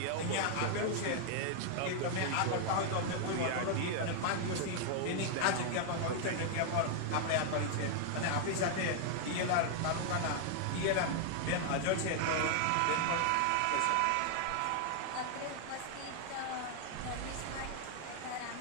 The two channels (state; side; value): different; both; correlation 0.00